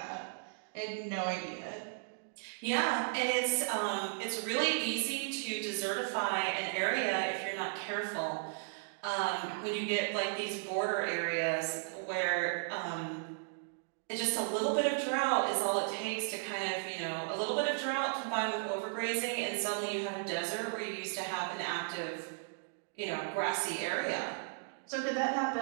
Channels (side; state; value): left; silent; digital silence